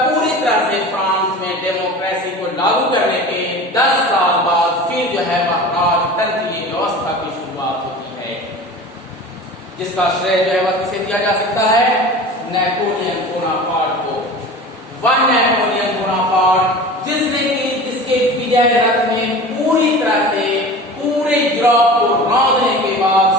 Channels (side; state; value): both; normal; correlation 0.36